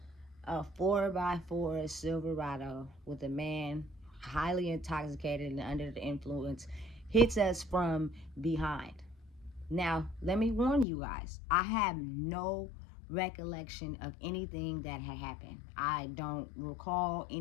a 4x4 Silverado with a man highly intoxicated and under the influence hits us from behind. Now, let me warn you guys, I have no recollection of anything that had happened. I don't recall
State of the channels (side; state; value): right; drops out; at 10.9 s